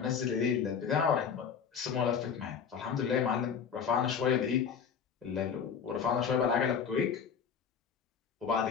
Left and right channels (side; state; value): right; quieter; 6.9 dB